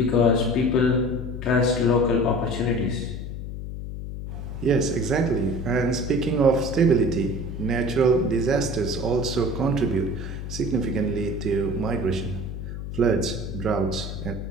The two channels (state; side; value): noise; left; hum, 7 dB below the sound